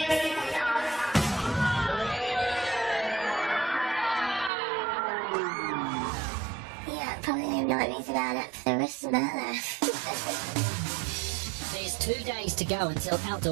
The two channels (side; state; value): left; drops out; at 4.5 s